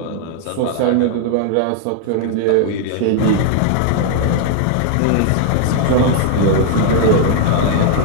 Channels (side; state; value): both; different; correlation 0.00